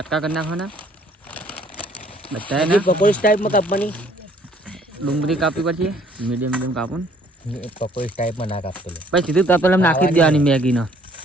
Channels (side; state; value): both; normal; correlation 0.60